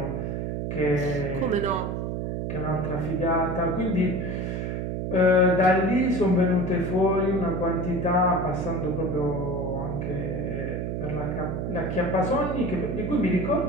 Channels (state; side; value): noise; right; hum, 2 dB below the sound